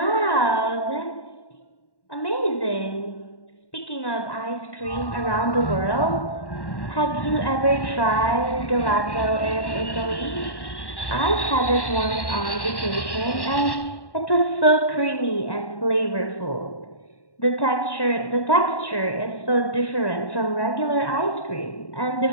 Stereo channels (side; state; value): right; late; 1.1 ms